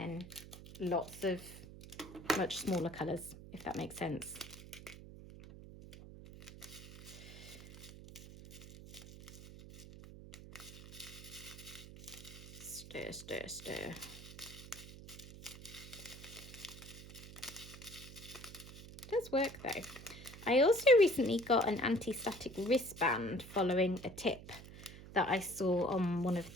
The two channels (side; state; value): right; noise; hum, 15 dB below the sound